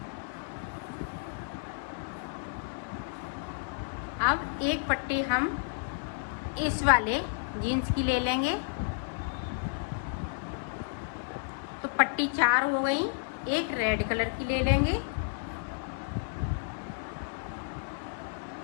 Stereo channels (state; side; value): silent; right; 57 dB below the other